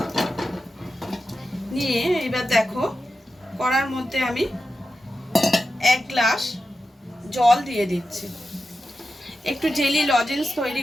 নিয়ে এবার দেখো, কড়ার মধ্যে আমি 1 গ্লাস জল দিয়ে দিচ্ছি। একটু জেলি লজেন্স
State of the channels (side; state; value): both; normal; correlation 0.91